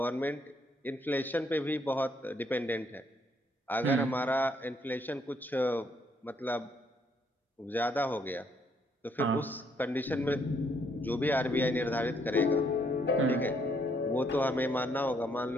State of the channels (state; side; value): normal; both; correlation 0.70